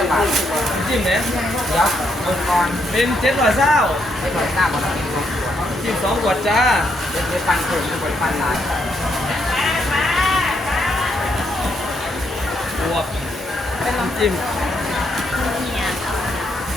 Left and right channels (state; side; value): normal; both; correlation 0.76